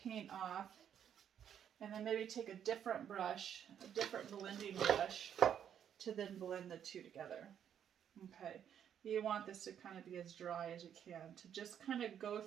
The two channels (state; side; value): quieter; left; 9.1 dB